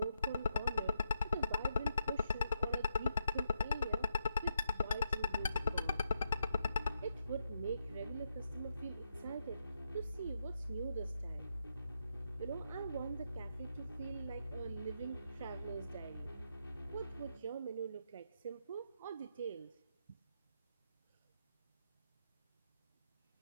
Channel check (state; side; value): inverted; both; correlation -0.81